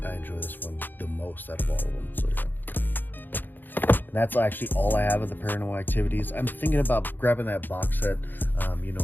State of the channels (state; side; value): late; right; 0.090 ms